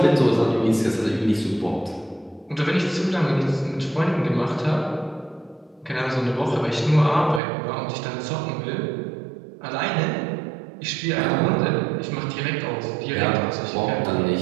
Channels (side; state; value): left; drops out; at 7.4 s